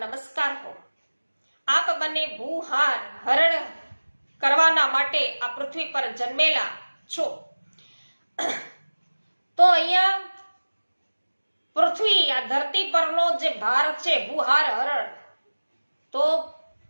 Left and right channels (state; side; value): inverted; both; correlation -1.00